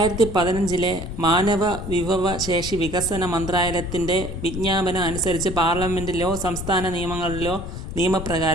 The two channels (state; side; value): noise; left; rumble, 7 dB below the sound